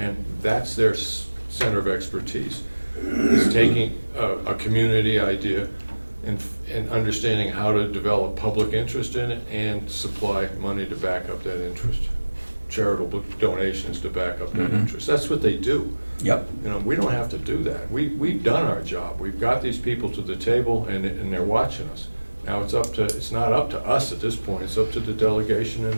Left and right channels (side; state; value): both; inverted; correlation -1.00